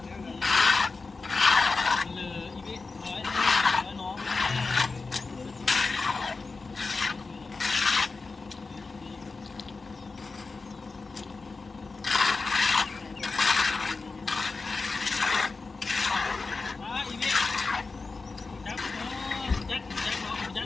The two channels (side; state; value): right; quieter; 4.0 dB